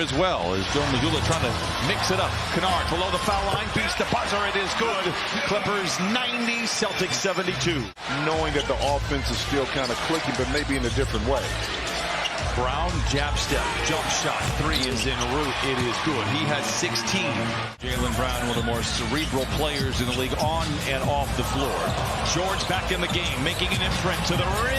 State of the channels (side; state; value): both; identical; correlation 1.00